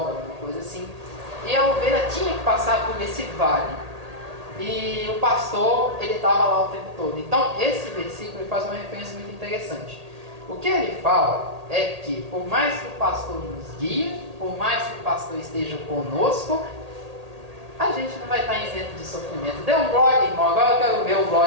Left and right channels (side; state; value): left; late; 1.8 ms